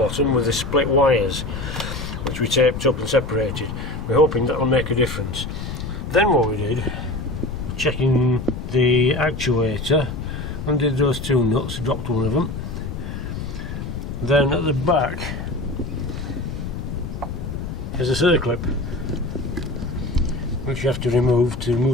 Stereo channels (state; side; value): noise; left; rumble, 6 dB below the sound